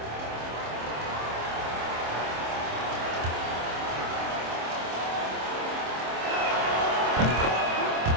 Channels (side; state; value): left; late; 26 ms